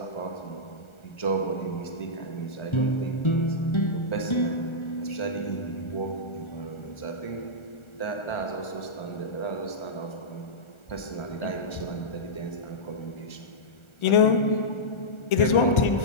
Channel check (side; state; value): right; late; 1.4 ms